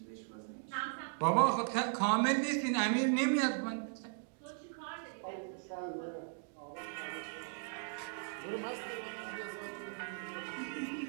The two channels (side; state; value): left; silent; 53 dB below the other